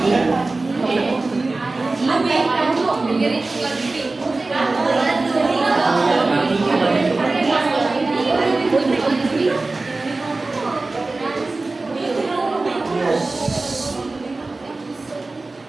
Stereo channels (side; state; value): left; quieter; 3.3 dB